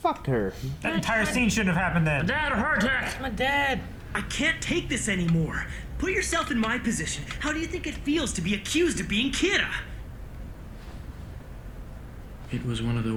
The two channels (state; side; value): identical; both; correlation 1.00